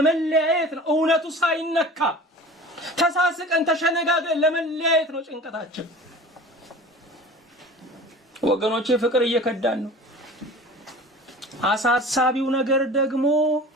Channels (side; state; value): both; normal; correlation 0.40